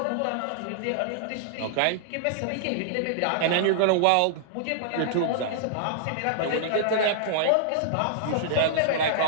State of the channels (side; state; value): both; different; correlation -0.01